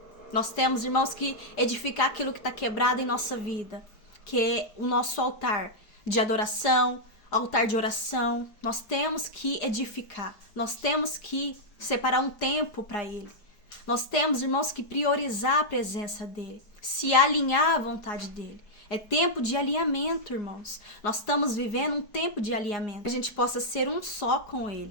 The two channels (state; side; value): late; right; 4.8 ms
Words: Nós temos, irmãos, que edificar aquilo que está quebrado em nossa vida, que é o nosso altar de adoração, altar de oração. Nós temos que edificar, nós temos que separar um tempo para ele. Nós temos, irmãos, que priorizar a presença dele, se alinhar à vontade dele. É tempo de alinhamento, irmãos. Nós estamos vivendo um tempo de alinhamento. Que a gente possa ser um só com